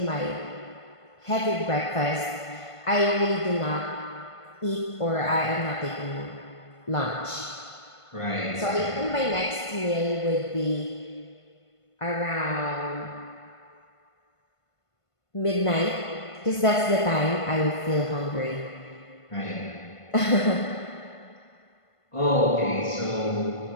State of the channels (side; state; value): right; late; 1.5 ms